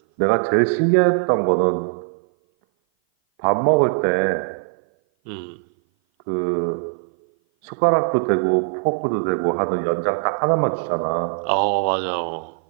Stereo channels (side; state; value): left; silent; 57 dB below the other